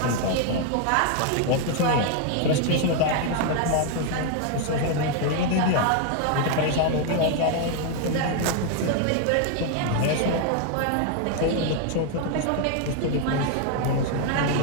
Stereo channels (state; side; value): different; both; correlation 0.00